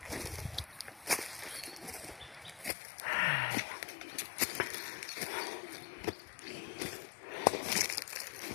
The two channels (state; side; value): drops out; right; at 2.7 s